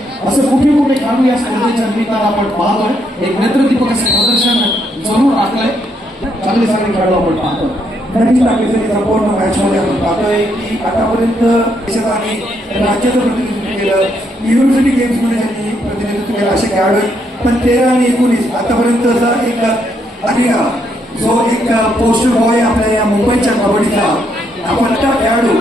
असं कुठे खेळाडू या स्पर्धेच्या निमित्तानं आपण पाहतोय. एक नेत्रदीपक असं प्रदर्शन जरूर राखलंय. चांगले खेळाडू आपण पाहतोय. नक्कीच टाकलेल्या संपूर्ण मॅचमध्ये आपण पाहतोय की आतापर्यंत देशात आणि राज्याचं प्रतिनिधित्व केलं. युनिव्हर्सिटी गेम्समध्ये त्यांनी प्रतिनिधित्व केलं असे खेळाडू. पण 13 आणि 19 आतापर्यंतचा एक आर्या जो एक पोस्टर बॉय आपल्या या मुंबईच्या कबड्डीचा आपण त्या खेळाडू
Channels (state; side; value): normal; both; correlation 0.75